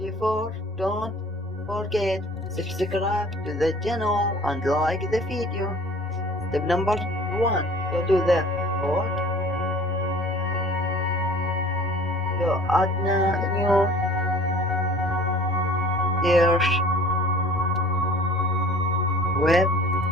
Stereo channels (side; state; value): both; normal; correlation 0.48